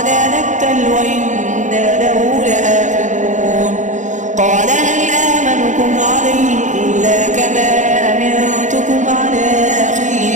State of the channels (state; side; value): late; left; 0.35 ms